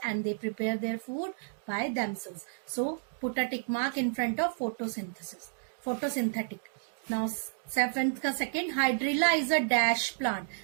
and they prepare their food by themselves. So put a tick mark in front of photosynthesis. Photosynthetic. Now 7th ka second, hydrilla is a dash plant.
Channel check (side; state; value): left; silent; digital silence